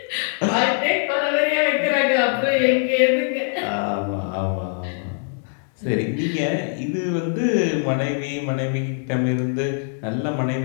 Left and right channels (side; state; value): right; silent; 64 dB below the other